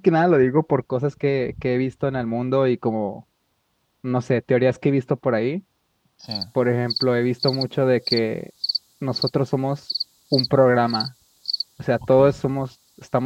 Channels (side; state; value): both; identical; correlation 1.00